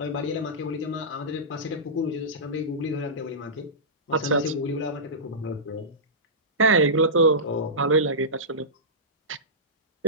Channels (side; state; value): both; normal; correlation -0.17